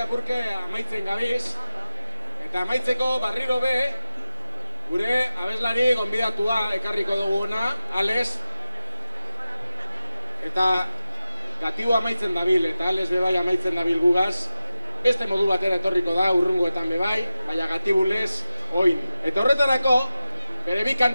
amaitzen gabiz. Eta amaitzeko barriro be, gure abeslari gonbidatua ekarriko duguna, Ales. Eta gatibu amaitzen dabil, eta Ales bebai amaitzen dabil gugaz. Beste modu batera etorriko da, urrungoetan bebai, baina gatibulez, oin. Eta horretarako, bere bi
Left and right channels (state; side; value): inverted; both; correlation -0.93